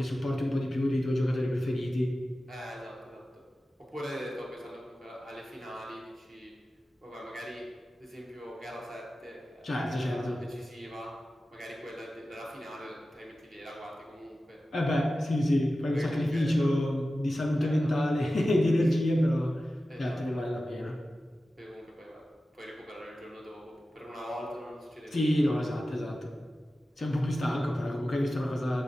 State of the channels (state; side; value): normal; both; correlation 0.94